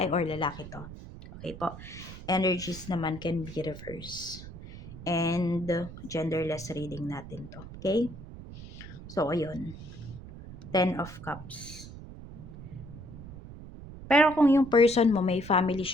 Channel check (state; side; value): noise; right; rumble, 13 dB below the sound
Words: or lalaki to. Okay po. Energies naman can be reversed. And genderless reading natin to. Okay? So, ayun. 10 of Cups. Pero kung yung person mo may family